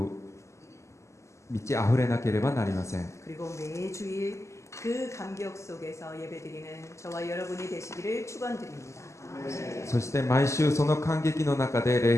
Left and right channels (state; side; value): late; right; 0.14 ms